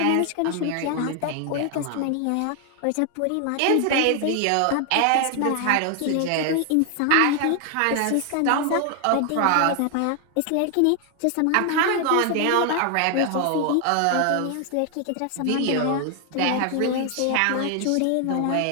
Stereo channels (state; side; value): different; both; correlation 0.00